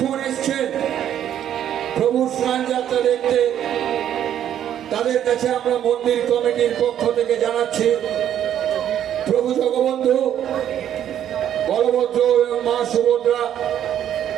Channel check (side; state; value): left; quieter; 10.4 dB